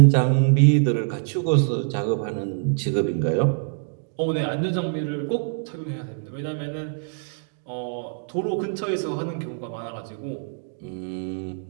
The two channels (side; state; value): left; silent; digital silence